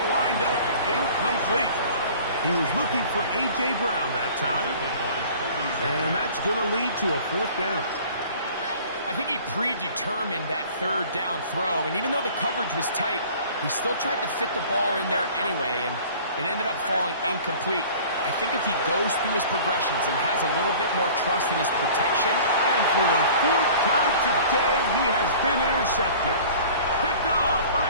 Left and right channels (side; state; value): both; inverted; correlation -0.46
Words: wind up incomplete. He was looking for A.J. Brown that time, and that's going to lead to a fourth down. I think he predetermined that third down throw, and even though the coverage was tight, he still tried to fit the ball in there anyway, and it ended up falling incomplete. I think if he goes through his progressions and has a little bit more trust in his protection. And for the 4th time today, he has been intercepted. Picked off